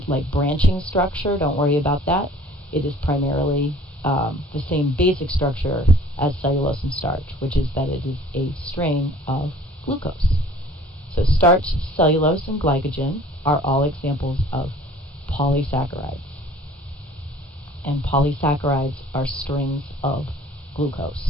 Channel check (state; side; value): normal; both; correlation 0.51